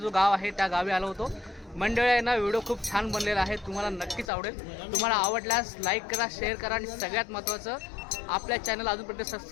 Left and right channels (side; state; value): right; drops out; at 4.3 s